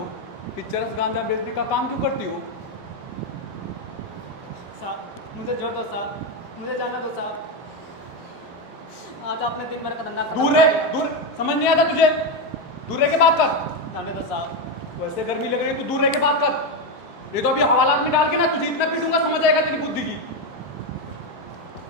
फिर चरस गांजा बेचने का काम क्यों करती हो? साहब मुझे जोड़ दो साहब, मुझे जाना दो साहब। आज आपने दिन भर का धंधा खराब दूर कर रह, दिया। दूर, समझ नहीं आता तुझे? दूर रह के बात कर। जाने दो साहब। वैसे गर्मी लग रही है, तू दूर रह के बात कर। ये तो अभी हवालात में डाल के ना तुझे इतना पीटूंगा, समझ आएगा तेरी बुद्धि की।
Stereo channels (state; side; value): normal; both; correlation 0.09